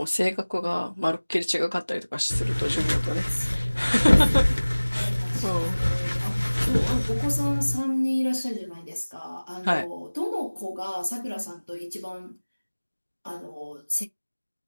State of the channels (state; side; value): inverted; both; correlation -1.00